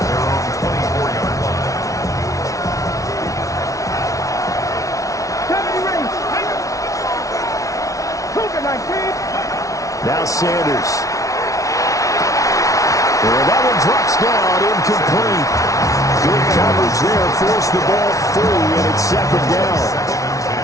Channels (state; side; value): late; right; 0.16 ms